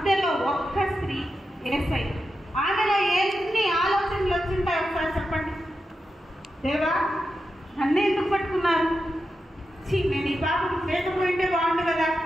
ఒక్క స్త్రీ, యేసయ్య. ఆమెలో ఎన్ని ఆలోచనలు వచ్చింటాయి ఒకసారి చెప్పండి. దేవా, నన్ను ఎందుకు పట్టుకున్నారు? నేను ఈ పాపం లేకపోయింటే బాగుండు కదా,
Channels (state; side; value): normal; both; correlation 0.89